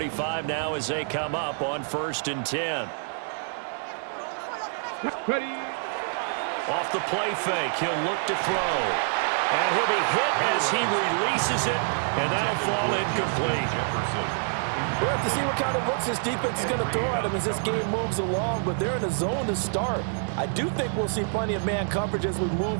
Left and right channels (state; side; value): silent; left; 60 dB below the other